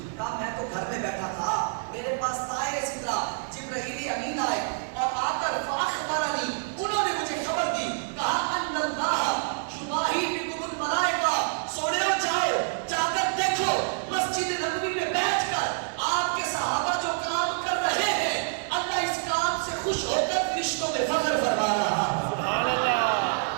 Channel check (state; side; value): silent; left; 56 dB below the other